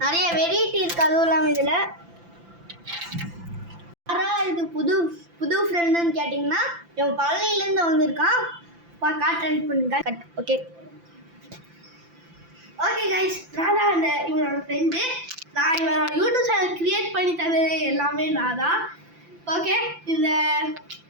நிறைய வெரைட்டி இருக்குது. அதுவும் இல்லாமல் இதில் யாராவது இது புது ஃப்ரெண்டுன்னு கேட்டிங்கன்னா இவன் பழனியிலேருந்து வந்திருக்கான். காட்டுறேன் பண்ணுங்க. ஓகே கைஸ், நான் தான் இவனோட ஃப்ரெண்டு. நான் இவனோட யூடியூப் சேனல் க்ரியேட் பண்ணி தந்தது எல்லாமே நான் தான். ஓகே,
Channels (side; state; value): left; late; 5.9 ms